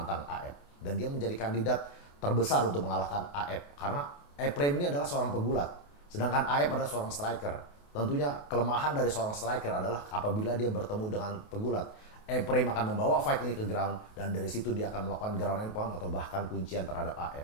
AF. Dan dia menjadi kandidat terbesar untuk mengalahkan AF. Karena Ephraim ini adalah seorang pegulat. Sedangkan AF adalah seorang striker. Tentunya kelemahan dari seorang striker adalah apabila dia bertemu dengan pegulat. Ephraim akan membawa fight ini ke ground dan dari situ dia akan melakukan ground and pound atau bahkan kuncian terhadap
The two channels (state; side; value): late; right; 28 ms